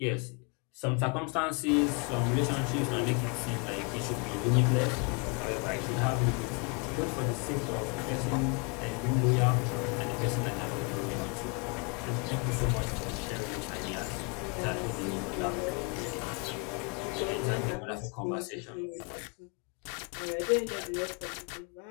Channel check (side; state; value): right; quieter; 32.9 dB